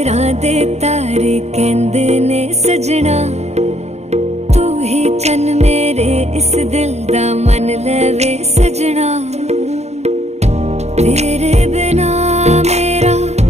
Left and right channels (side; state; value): left; late; 0.32 ms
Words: दे तारे कहंदे ने सजना, तू ही चन मेरे इस दिल